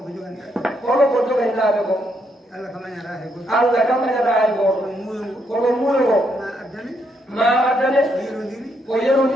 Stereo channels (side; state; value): both; normal; correlation 0.76